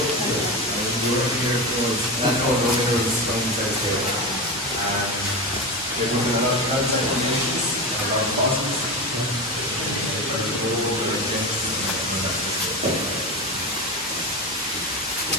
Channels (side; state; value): both; normal; correlation 0.22